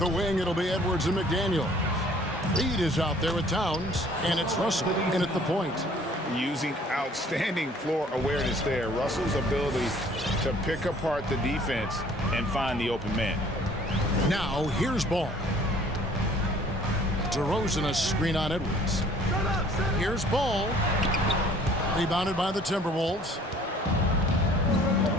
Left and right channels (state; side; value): normal; both; correlation 0.55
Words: wing, it'll be Edwards and McDaniel. Reed is out there with Towns, and it's Russell in at the point. Using outstanding floor awareness there. Russell's ability to pick apart the defense and find the open man. Now, here's Ball. DeRozan a screen on Edwards. Here's Ball. Rebounded by the Timberwolves.